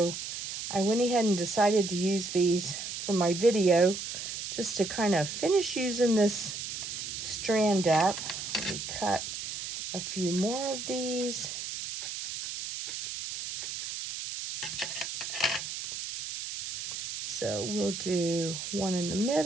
I went ahead and decided to use these for my video just to kind of finish using this strand up. Let me cut a few more of these. So we'll do one in the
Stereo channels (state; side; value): noise; right; hiss, 6 dB below the sound